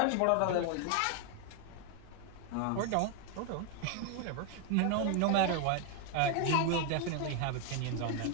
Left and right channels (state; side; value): different; both; correlation 0.01